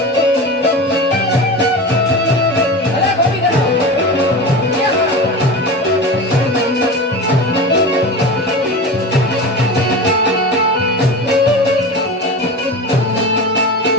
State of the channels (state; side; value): normal; both; correlation 0.28